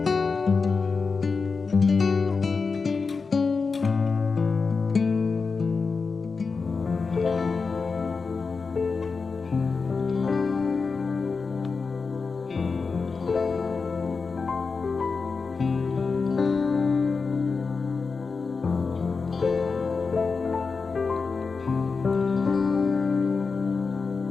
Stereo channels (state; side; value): quieter; right; 4.7 dB